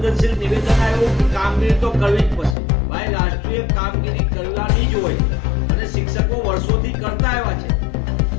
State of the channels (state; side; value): drops out; right; at 2.6 s